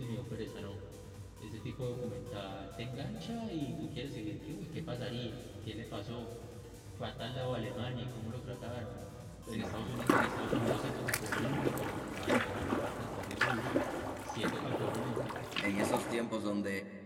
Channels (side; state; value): both; identical; correlation 1.00